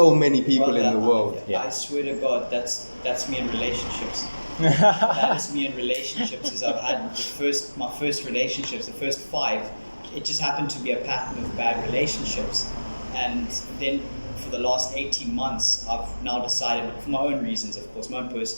many people in the world. Yeah. I swear to God, that's me in relationships. That is me in relationships. Is I've had my first relationships, the first 5. It just happened to be a pattern of bad relationships, and then for the last 18 months, I've now decided, for my own reasons, of course, my own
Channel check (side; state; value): both; inverted; correlation -1.00